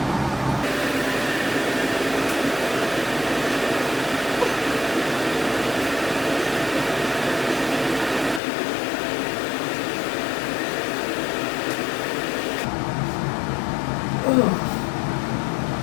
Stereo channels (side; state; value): right; drops out; at 8.4 s